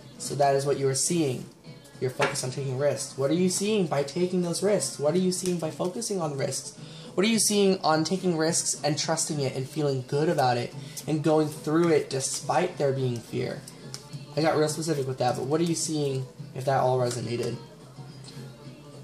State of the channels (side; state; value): both; identical; correlation 1.00